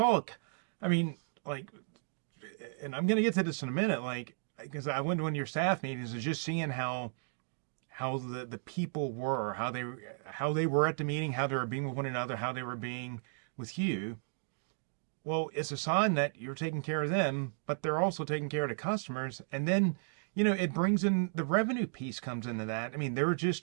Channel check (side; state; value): left; silent; digital silence